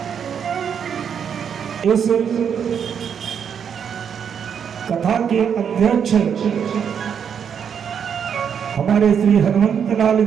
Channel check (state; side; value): quieter; left; 7.7 dB